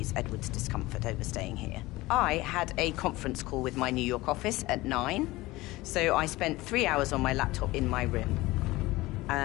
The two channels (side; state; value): right; quieter; 19.5 dB